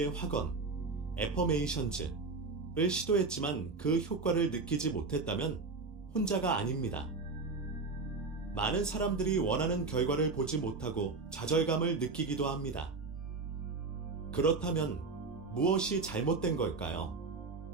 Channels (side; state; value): left; quieter; 4.0 dB